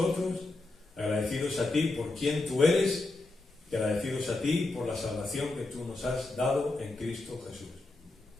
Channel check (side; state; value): right; quieter; 3.0 dB